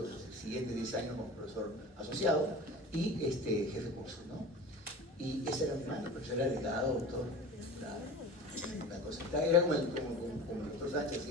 siguientes 10 años como profesor asociado y jefe de curso, ¿no? Y ese era mi mano, pero yo era delgado, doctor, una cosa, era como el doctor Sánchez,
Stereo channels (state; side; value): normal; both; correlation 0.36